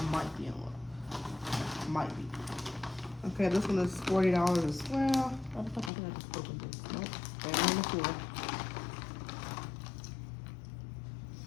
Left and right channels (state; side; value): drops out; right; at 5.9 s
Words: might be in one. Might be. Okay, this one is $40 as well. I think I just opened this. Nope, they're on the floor.